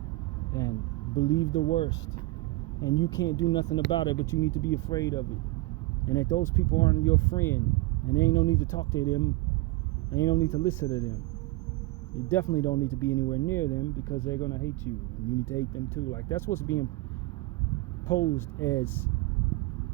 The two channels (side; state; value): left; quieter; 20.4 dB